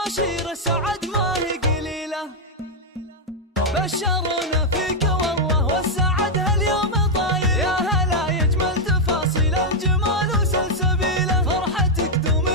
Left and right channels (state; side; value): normal; both; correlation -0.01